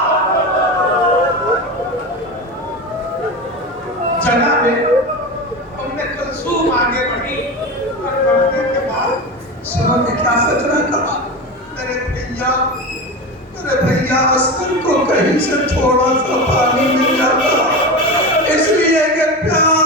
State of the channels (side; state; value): both; normal; correlation 0.24